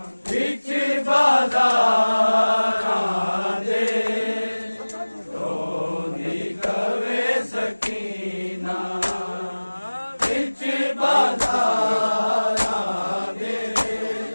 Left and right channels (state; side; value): inverted; both; correlation -1.00